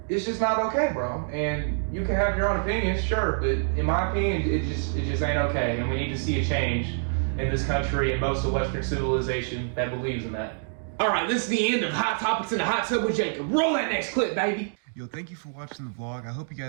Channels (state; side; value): silent; left; digital silence